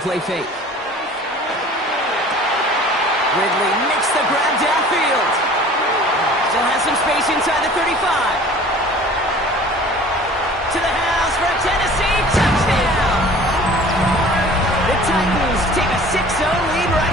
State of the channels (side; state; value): both; normal; correlation 0.46